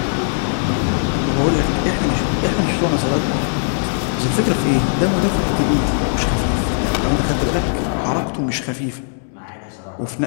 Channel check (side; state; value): right; silent; digital silence